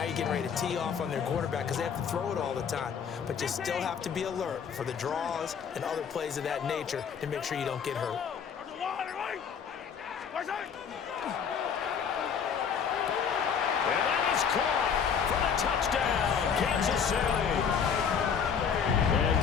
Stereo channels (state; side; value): quieter; right; 7.0 dB